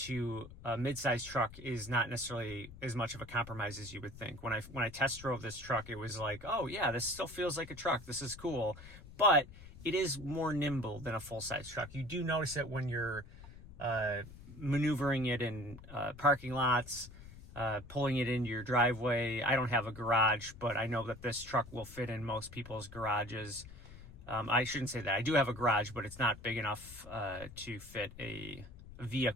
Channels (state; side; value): noise; left; rumble, 16 dB below the sound